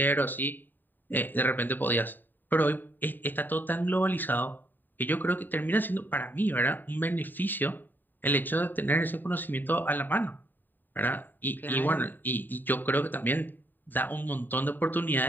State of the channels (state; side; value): late; right; 0.091 ms